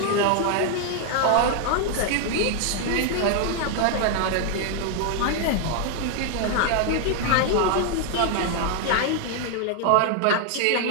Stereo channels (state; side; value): different; both; correlation 0.00